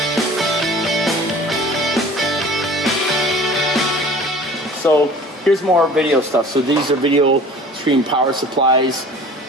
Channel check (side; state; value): both; normal; correlation 0.45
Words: So here's more video stuff. So these are video stream power supplies,